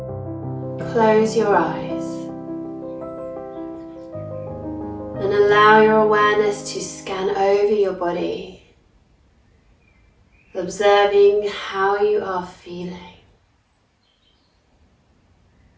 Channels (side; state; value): both; identical; correlation 1.00